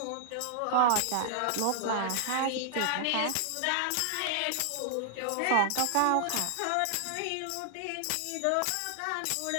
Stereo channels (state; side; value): different; both; correlation 0.00